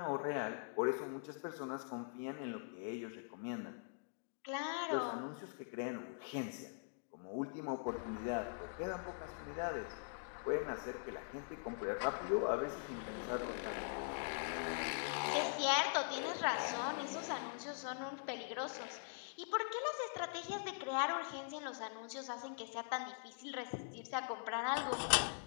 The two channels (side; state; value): right; silent; digital silence